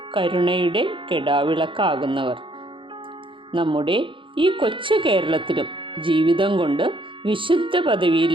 കരുണയുടെ കെടാവിളക്കാകുന്നവർ. നമ്മുടെ ഈ കൊച്ചു കേരളത്തിലും ജീവിതം കൊണ്ട് വിശുദ്ധ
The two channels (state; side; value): late; left; 0.25 ms